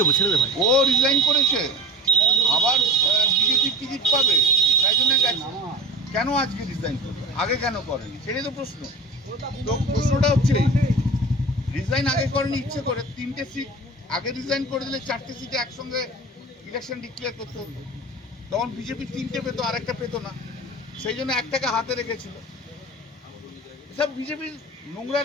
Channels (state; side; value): normal; both; correlation 0.32